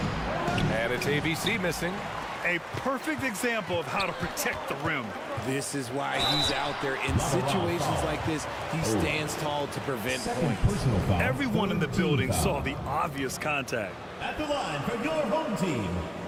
And it's ABC missing. A perfect example of how to protect the rim. This is why he's out there in situations like this. He stands tall to prevent points. Everyone in the building saw the obvious contact. At the line for your home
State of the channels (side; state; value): both; identical; correlation 1.00